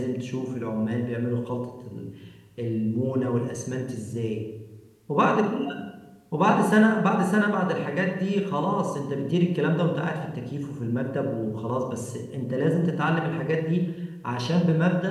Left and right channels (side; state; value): both; identical; correlation 1.00